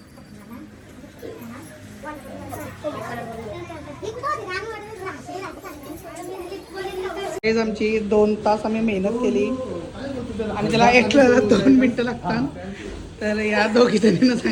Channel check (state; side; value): identical; both; correlation 1.00